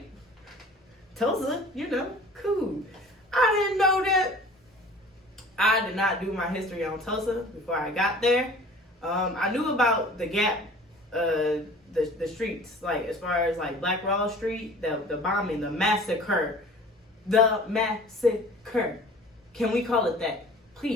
Tulsa, you know, cool. I didn't know that. I did not do my history on Tulsa before I got there. I knew about the Gap, the streets, like as far as like Black Wall Street, the bombing, the massacre. Can we call it that,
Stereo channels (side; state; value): both; normal; correlation 0.45